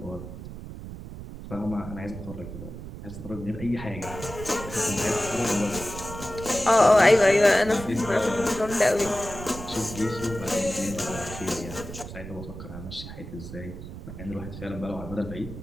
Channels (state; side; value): noise; right; rumble, 11 dB below the sound